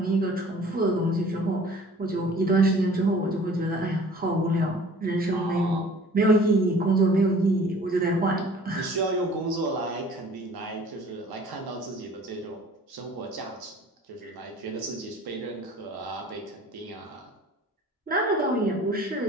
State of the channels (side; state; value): both; normal; correlation 0.49